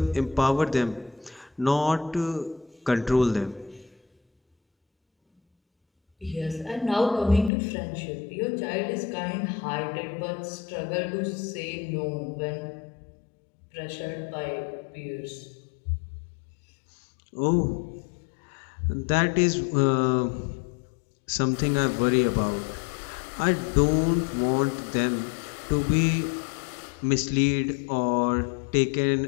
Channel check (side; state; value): right; drops out; at 7.5 s